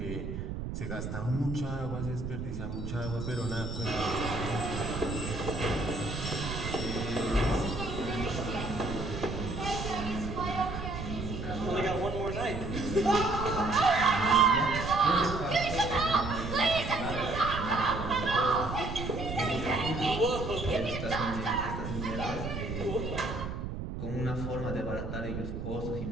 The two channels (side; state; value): right; noise; rumble, 5 dB below the sound